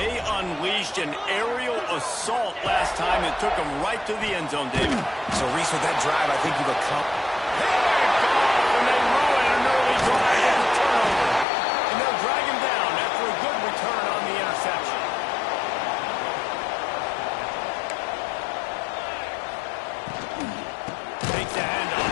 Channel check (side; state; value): right; drops out; at 11.5 s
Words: unleashed an aerial assault last time. It took them right to the end zone, David. So, Reese, with that drive, I think you've accomplished. And they ruin an early drive with a turnover. And they'll drag him down after a good return on the interception. Takes the